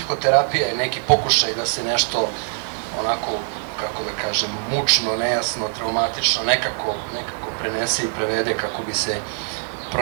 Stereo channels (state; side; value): silent; left; digital silence